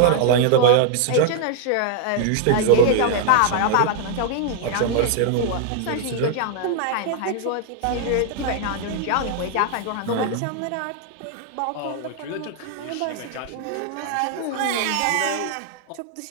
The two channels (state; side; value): different; both; correlation 0.00